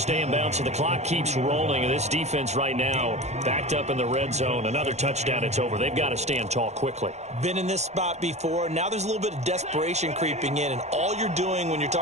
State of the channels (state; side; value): late; left; 0.32 ms